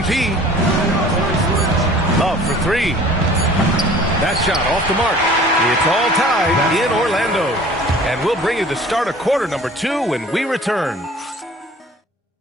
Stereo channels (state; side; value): normal; both; correlation 0.47